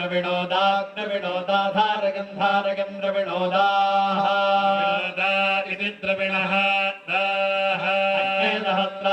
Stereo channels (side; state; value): both; identical; correlation 1.00